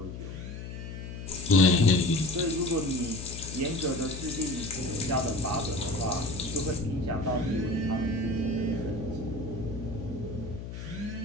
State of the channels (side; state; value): left; noise; hum, 9 dB below the sound